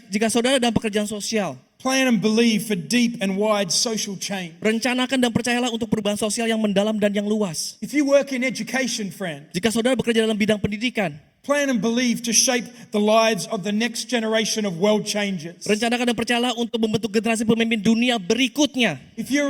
saudara dalam pekerjaan sosial, plan and believe for deep and wide social change. rencanakan dan percayalah untuk perubahan sosial yang mendalam dan yang luas. If you work in education, friend, Jika saudara bekerja dalam bidang pendidikan, plan and believe to shape the lives of the next generation of world changers. rencanakan dan percayalah untuk membentuk generasi pemimpin dunia berikutnya. If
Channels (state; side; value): identical; both; correlation 1.00